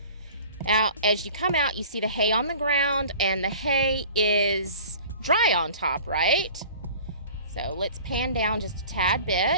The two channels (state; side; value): inverted; both; correlation -0.44